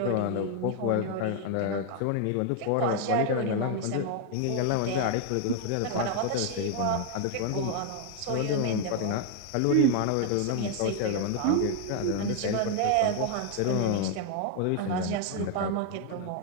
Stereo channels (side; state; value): both; different; correlation 0.00